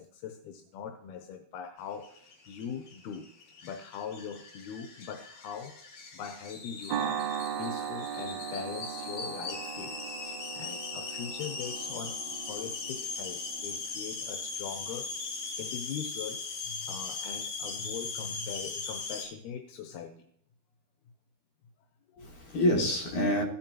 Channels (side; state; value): right; late; 13 ms